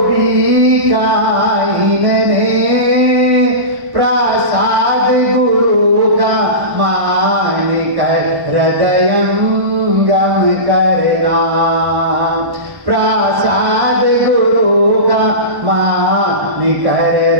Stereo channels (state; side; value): late; left; 1.1 ms